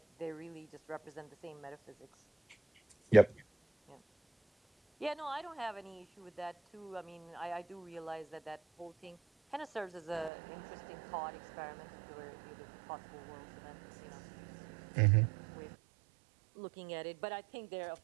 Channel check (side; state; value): left; drops out; at 10.3 s